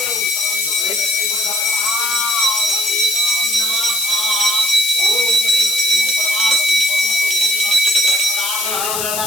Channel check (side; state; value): left; noise; hiss, 1 dB below the sound